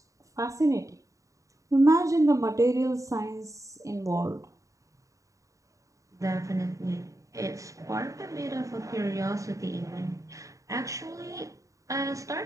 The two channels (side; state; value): left; late; 0.16 ms